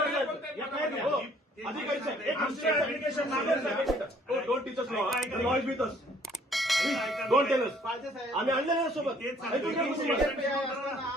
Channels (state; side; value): normal; both; correlation 0.60